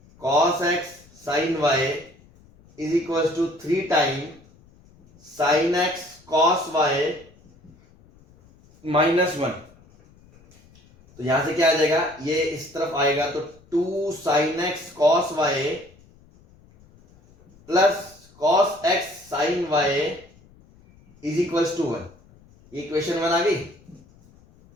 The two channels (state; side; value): noise; left; rumble, 27 dB below the sound